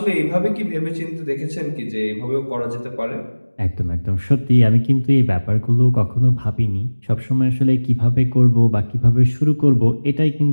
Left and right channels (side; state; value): both; inverted; correlation -1.00